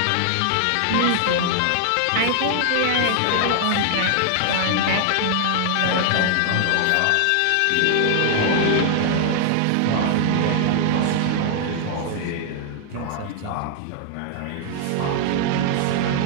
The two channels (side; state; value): both; different; correlation 0.00